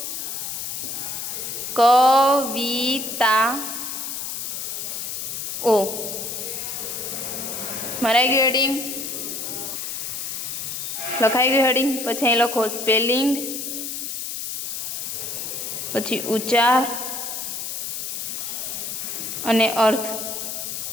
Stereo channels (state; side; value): noise; left; hiss, 5 dB below the sound